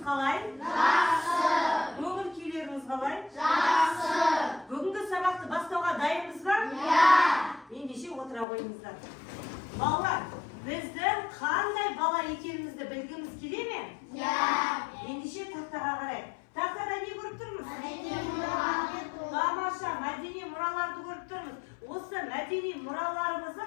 Жақсы. Көңіл күйлеріңіз қалай? Жақсы. Бүгінгі сабақты бастауға дайынбыз ба? Иә. Ендеше отыра қойыңыздар. Балалар, біздің қандай бала екенімізді білгіміз келе ме? Иә. Ендеше тақтаға қарайық. Тақтада не көріп тұрмыз? Мәдени мұраларды. Тамаша, мәдени мұраларды көріп тұрмыз. Осы мәдени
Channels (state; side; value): drops out; right; at 8.5 s